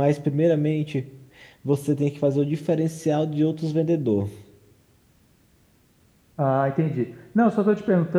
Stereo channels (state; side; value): identical; both; correlation 1.00